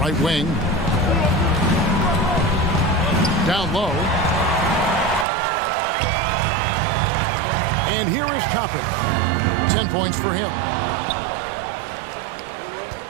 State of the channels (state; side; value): drops out; left; at 5.2 s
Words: wing. Down low. And here is Toppin. 10 points for him.